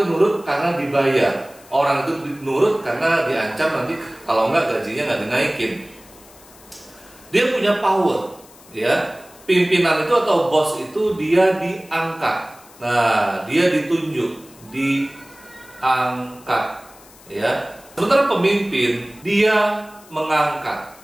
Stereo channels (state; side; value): noise; left; hiss, 24 dB below the sound